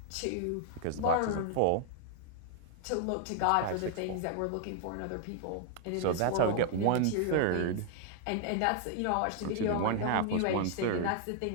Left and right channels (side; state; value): both; different; correlation -0.01